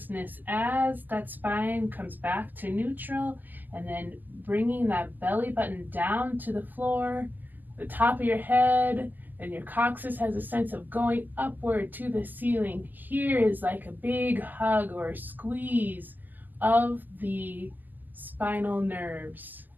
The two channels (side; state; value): left; late; 0.086 ms